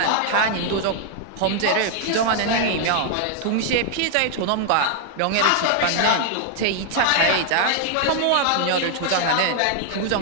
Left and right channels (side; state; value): both; different; correlation 0.00